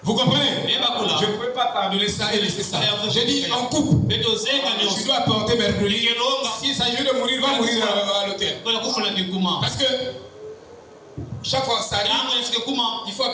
Vous comprenez? Je ne peux pas pardonner ça et laisser ça. J'ai dit en coupe. Tu dois apporter mercredi. S'il s'agit de mourir, va mourir à l'hôtel. Parce que chaque fois ça arrive, il faut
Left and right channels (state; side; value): identical; both; correlation 1.00